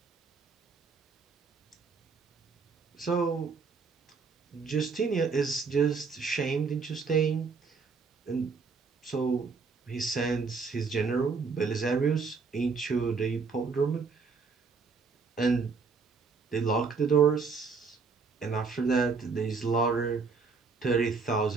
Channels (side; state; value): left; quieter; 4.9 dB